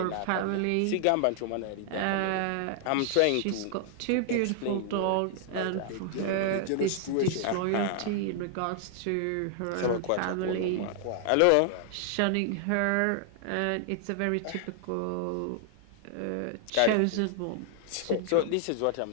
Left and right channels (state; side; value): different; both; correlation 0.00